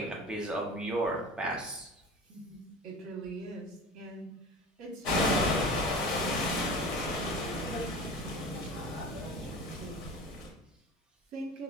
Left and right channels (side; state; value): both; normal; correlation 0.36